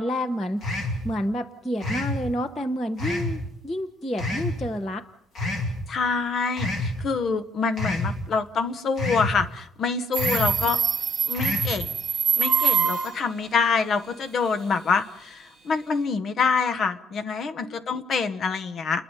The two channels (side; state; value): both; normal; correlation 0.69